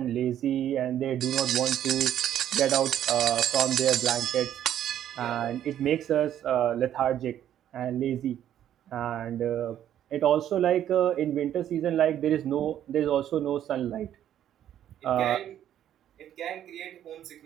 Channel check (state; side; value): quieter; left; 10.9 dB